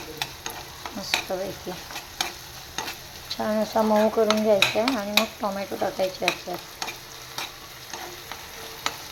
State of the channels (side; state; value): both; identical; correlation 1.00